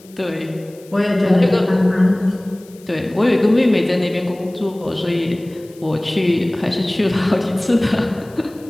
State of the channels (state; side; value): noise; left; hiss, 26 dB below the sound